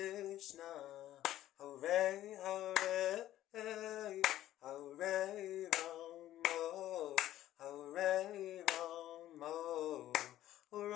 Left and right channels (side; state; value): right; quieter; 13.4 dB